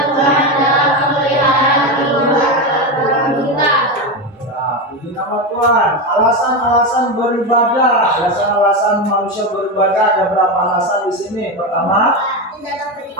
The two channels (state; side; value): normal; both; correlation 0.15